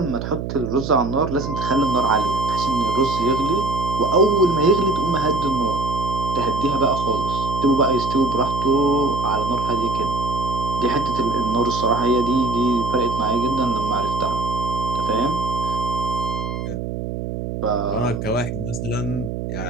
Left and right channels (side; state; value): right; noise; hum, 5 dB below the sound